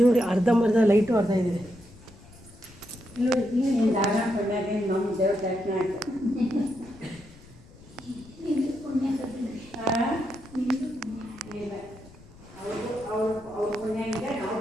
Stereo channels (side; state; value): left; noise; rumble, 22 dB below the sound